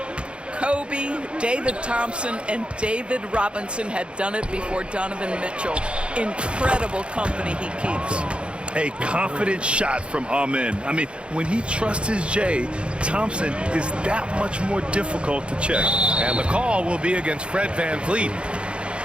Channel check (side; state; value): left; late; 0.057 ms